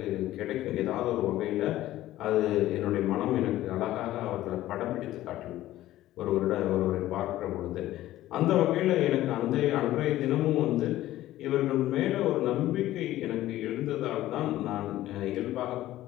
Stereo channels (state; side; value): quieter; right; 14.8 dB